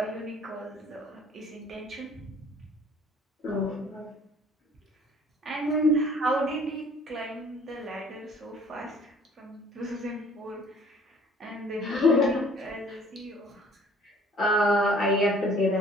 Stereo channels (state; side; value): normal; both; correlation 0.54